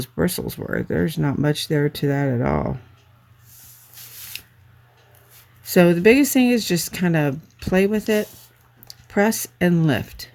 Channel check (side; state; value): both; identical; correlation 1.00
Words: bristles were. There's not much there to that at all. So the biggest thing is just kind of play with it, press and lift.